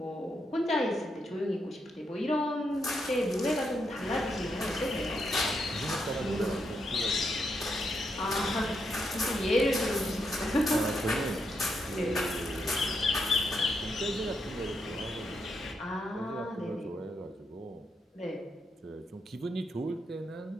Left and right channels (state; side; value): normal; both; correlation 0.81